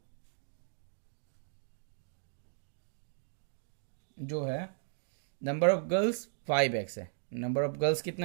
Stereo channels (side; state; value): left; silent; digital silence